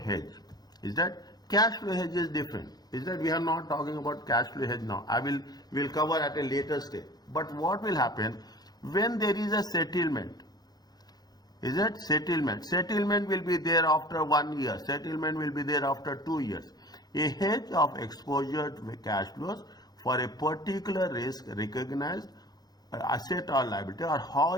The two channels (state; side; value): late; right; 0.19 ms